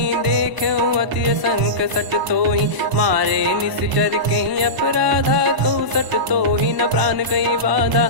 देखऊँ अति संक सट तोहि। मारे निश्चर कहीं अपराधा, कहूँ सट तोहि न प्राण कहीं बाधा।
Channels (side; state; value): left; late; 1.0 ms